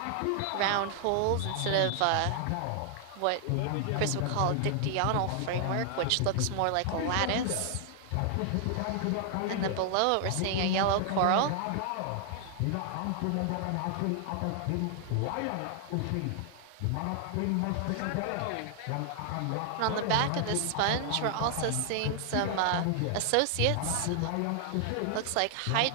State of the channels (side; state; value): both; different; correlation 0.00